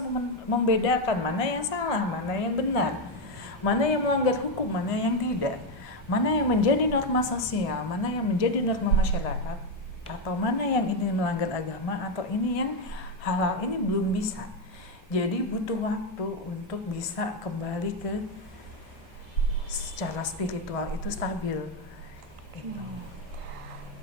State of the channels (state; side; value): normal; both; correlation 0.07